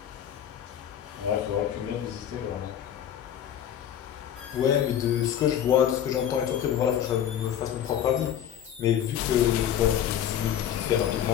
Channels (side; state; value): right; quieter; 9.9 dB